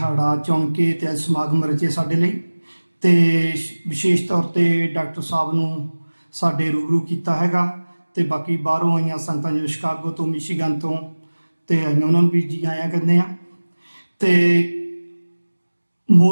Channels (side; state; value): both; inverted; correlation -1.00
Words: ਚੁਣ ਕੇ ਤੇ ਅੱਜ ਸਮਾਗਮ ਰਚੇ ਸਾਡੇ ਲਈ, ਤੇ ਵਿਸ਼ੇਸ਼ ਤੌਰ ਤੇ ਡਾਕਟਰ ਸਾਹਿਬ ਨੂੰ ਸਾਡੇ ਰੂਬਰੂ ਕੀਤਾ ਹੈਗਾ, ਤੇ ਬਾਕੀ ਬਾਹਰੋਂ ਆਈਆਂ ਸੰਗਤਾਂ ਜਿਵੇਂ ਸ਼ਿਕਾਗੋ ਤੋਂ, ਮਿਸ਼ੀਗਨ ਤੋਂ ਤੇ ਆਈਆਂ, ਉਹਨਾਂ ਨੂੰ ਵੀ ਜੀ ਆਇਆਂ ਕਹਿੰਦੇ ਆ। ਤੇ